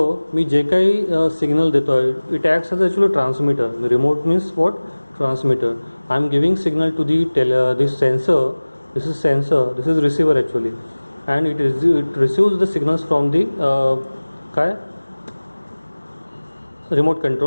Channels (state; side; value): inverted; both; correlation -1.00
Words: मी जे काही सिग्नल देतो आहे it acts as actually transmitter. Remote means what? Transmitter. I am giving signal to the this sensor. This is sensor, this is receiver actually, and it receives the signals from the remote